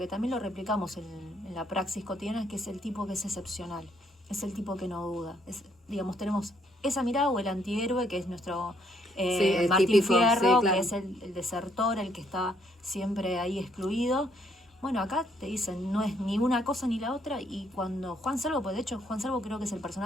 también lo replicamos en la praxis cotidiana, que es el tipo que es excepcional, es el tipo que no duda. Digamos, tenemos esa mirada, o el antihéroe, que es nuestro Martín típico, Fierro, claro. Que es el desertor, el que está siempre ahí excluido. Bueno, acá te dicen, no es ni una cosa ni la otra, y cuando Juan Salvo, pues de hecho Juan Salvo creo que es el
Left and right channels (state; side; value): normal; both; correlation 0.70